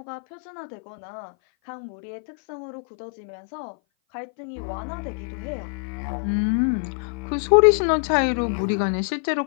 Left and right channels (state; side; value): silent; right; 57 dB below the other